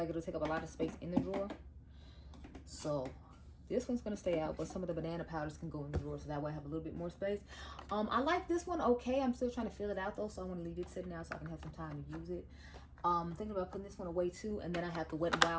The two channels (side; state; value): both; identical; correlation 1.00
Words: it'll take up a lot of space in the drawer. So this one's gonna stay out, but some of the banana powders can go in the drawer, so that way I have a little bit more space. I like this one okay. I'm still trying to fill it out though, so I want to leave it sitting out so I can have some time to use it. Thinking about putting this one away too, and then I have the Wet n